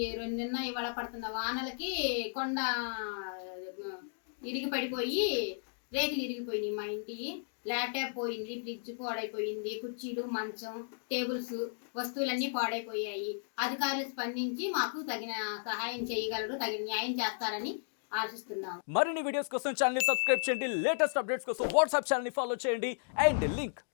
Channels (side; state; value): right; silent; digital silence